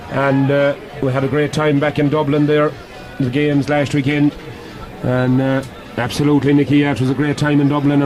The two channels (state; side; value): identical; both; correlation 1.00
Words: and we had a great time back in Dublin there, the games last weekend, and absolutely, Nicky, it was a great time in Dublin,